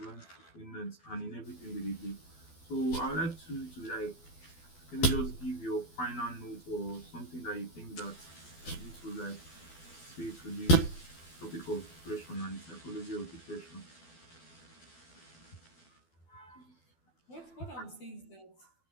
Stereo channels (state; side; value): late; right; 12 ms